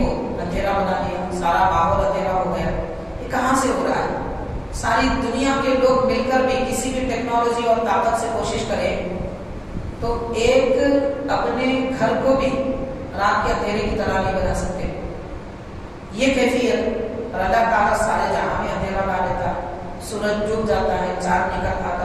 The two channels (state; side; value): identical; both; correlation 1.00